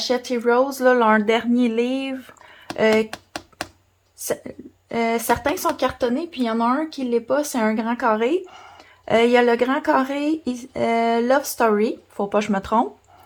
Heroes, là, leur dernier livre. Certains sont cartonnés, puis il y en a un qui ne l'est pas, c'est un grand carré. Il y a le grand carré Love Story, faut pas que je me trompe.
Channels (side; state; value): both; identical; correlation 1.00